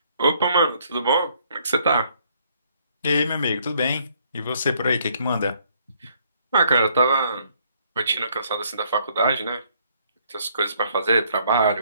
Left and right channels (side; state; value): both; inverted; correlation -0.66